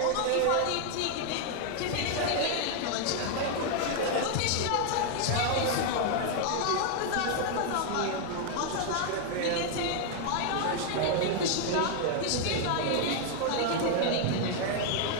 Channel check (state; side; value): different; both; correlation 0.00